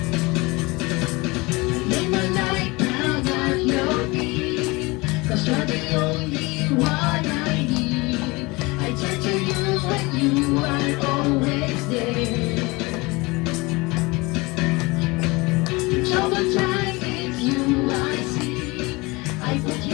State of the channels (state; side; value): quieter; right; 24.3 dB